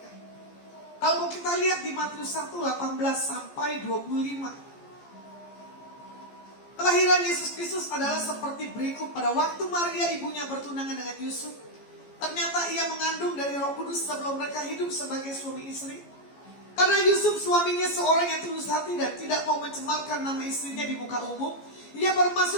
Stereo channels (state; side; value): late; right; 14 ms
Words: Kalau kita lihat di Matius 1, 18 sampai 25. Kelahiran Yesus Kristus adalah seperti berikut. Pada waktu Maria ibunya bertunangan dengan Yusuf, ternyata ia mengandung dari Roh Kudus sebelum mereka hidup sebagai suami istri. Karena Yusuf suaminya seorang yang tulus hati dan tidak mau mencemarkan nama istrinya di muka umum, ia